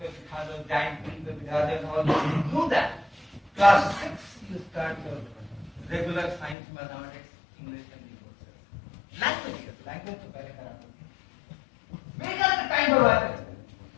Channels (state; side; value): drops out; right; at 6.6 s